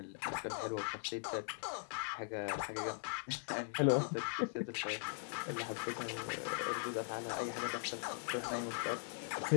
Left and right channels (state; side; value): silent; right; 51 dB below the other